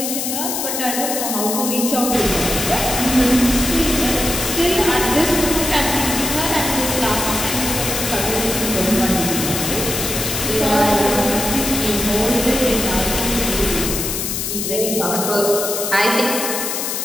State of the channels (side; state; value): left; noise; hiss, 2 dB below the sound